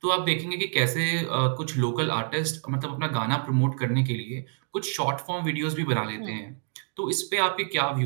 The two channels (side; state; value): left; silent; 60 dB below the other